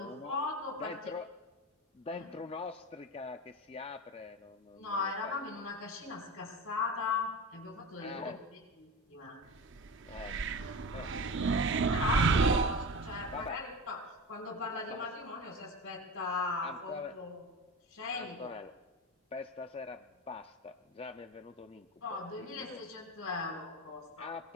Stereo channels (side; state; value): both; normal; correlation 0.28